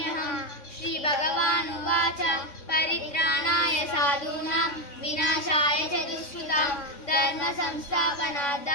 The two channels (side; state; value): right; late; 3.6 ms